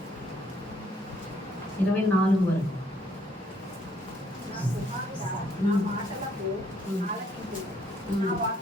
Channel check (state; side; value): normal; both; correlation 0.68